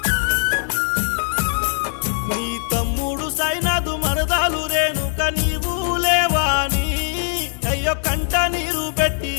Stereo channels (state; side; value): silent; right; 65 dB below the other